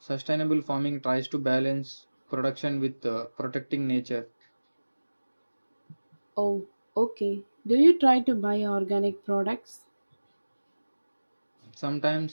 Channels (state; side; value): inverted; both; correlation -1.00